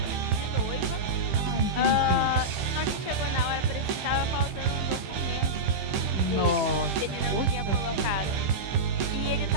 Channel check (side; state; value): left; late; 15 ms